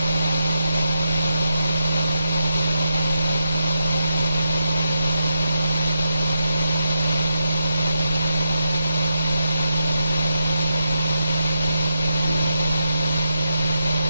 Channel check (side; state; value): both; inverted; correlation -0.84